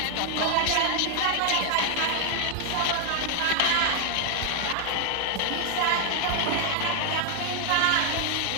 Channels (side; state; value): both; different; correlation 0.00